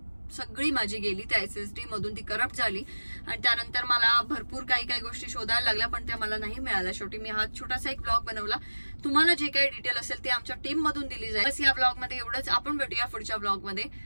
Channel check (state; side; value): inverted; both; correlation -1.00